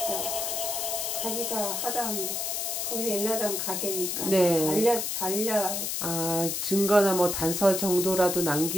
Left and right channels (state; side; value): noise; left; hiss, 1 dB below the sound